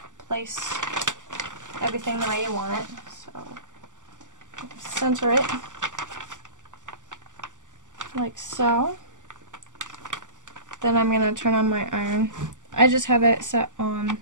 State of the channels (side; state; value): left; late; 0.87 ms